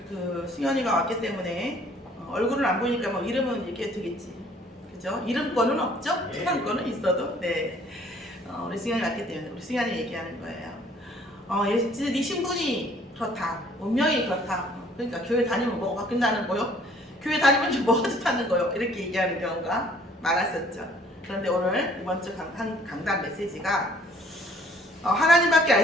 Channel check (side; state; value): both; normal; correlation 0.58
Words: 그 승현이가 왔기 때문에 얼굴은 안 보이니까 뭐 이름은 얘기해도 되겠지. 그죠? 이름권은 없죠? 초상권은 있어도. 네. 우리 승현이 왔기 때문에 우리 승현이 얘기하는 거예요. 네 신분이 그렇다. 운명이 그렇다. 그러니까 교회 다니면 뭐가 바뀐다는 거요? 교회 다니면 뭐가 좋다는 거요? 이렇게 얘기하는 경우가 많았었죠. 그런데 오늘 이번 주 강단 메시지가 하나님밖에